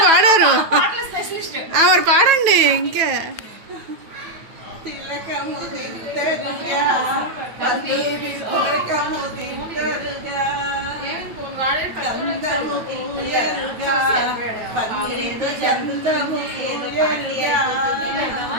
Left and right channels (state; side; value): late; left; 9.2 ms